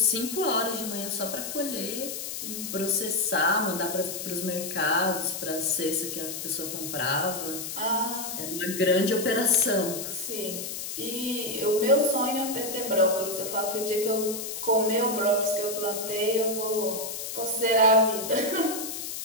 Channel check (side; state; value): left; noise; hiss, 6 dB below the sound